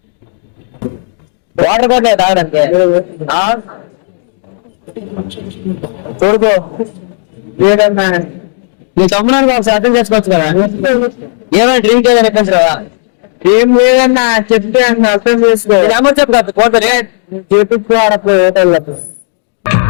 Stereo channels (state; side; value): silent; right; digital silence